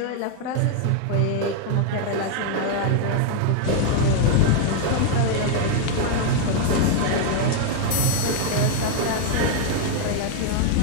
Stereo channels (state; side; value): different; both; correlation 0.00